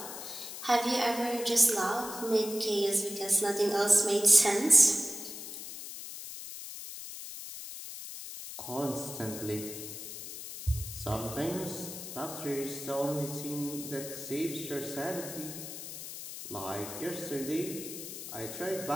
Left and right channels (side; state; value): left; noise; hiss, 9 dB below the sound